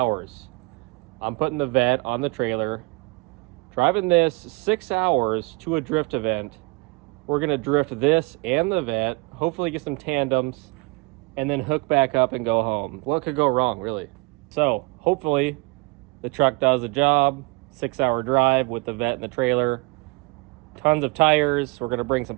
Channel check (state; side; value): quieter; left; 27.1 dB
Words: I'm putting the vet on the trailer. Driving this 6 hours to a drift event. We're gonna drift this and the vet, hopefully get some tandems, and then hook back up and go home. What could go wrong, really? So hopefully the truck does the job. 6 hour drive with the vet and the trailer. Tons of tires. We're gonna bring some